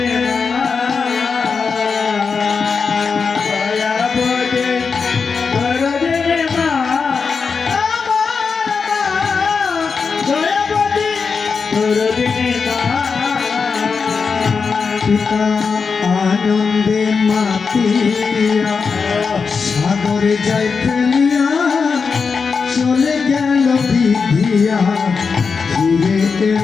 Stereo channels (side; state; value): right; quieter; 5.3 dB